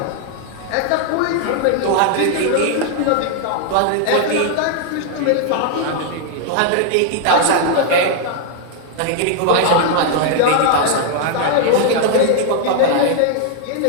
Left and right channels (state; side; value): different; both; correlation 0.00